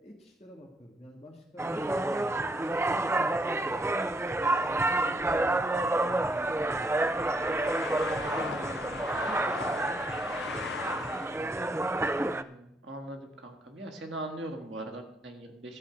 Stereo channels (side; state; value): both; normal; correlation 0.72